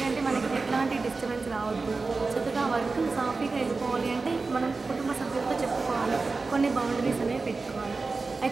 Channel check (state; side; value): quieter; left; 4.0 dB